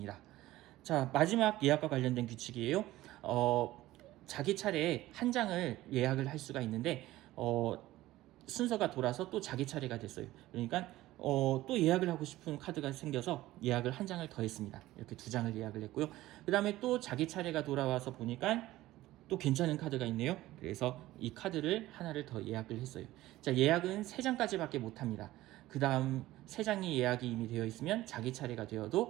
자, 마지막 예약과 관련된 규칙이에요. 자기 차례에 한 장을 예약을 할 수가 있는데 순서가 돌아서 또 자기 차례가 됐어요. 그러니까 또 예약을 하고 싶은 카드가 생겨서 예약을 한 장을 더 했습니다. 이렇게 2장을 예약을 했고요. 그 다음에 또 자기 차례가 돌아와서 보니까 또 괜찮은 카드가 있네요. 그래서 이 카드를 하나를 더 예약을 했어요. 자, 예약은 3장까지밖에 못합니다. 그 다음 3장이 예약이 이미 되어 있으면 자기 차례가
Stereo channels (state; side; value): quieter; left; 16.3 dB